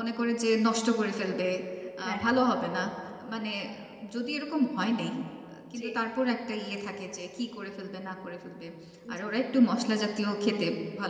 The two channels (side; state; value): both; identical; correlation 1.00